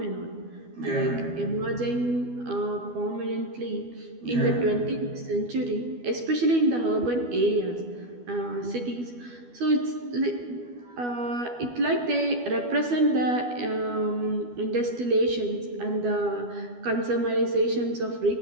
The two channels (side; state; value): left; late; 12 ms